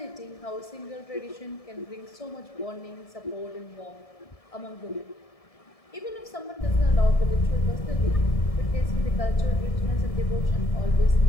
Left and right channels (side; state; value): right; late; 1.7 ms